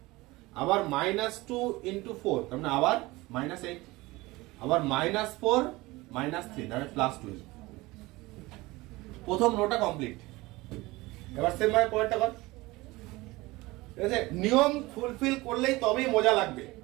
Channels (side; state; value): left; quieter; 21.0 dB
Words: আবার -2 into 4 তার মানে আবার -8, আবার -4 -3 তাহলে +12। প্রথম রোটা কমপ্লিট। এবার সেম ভাবে পরেরটা কর। ঠিক আছে, নিয়ম ফুলফিল করলেই তবেই মজা লাগবে।